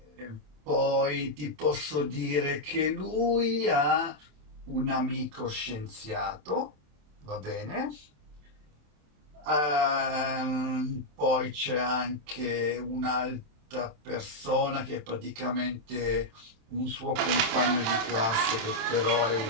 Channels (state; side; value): late; left; 27 ms